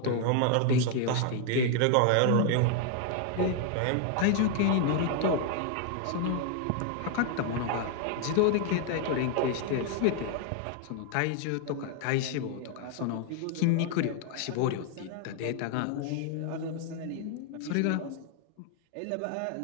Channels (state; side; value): different; both; correlation 0.00